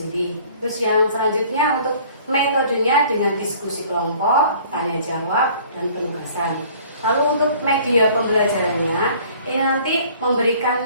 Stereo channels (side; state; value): both; inverted; correlation -0.53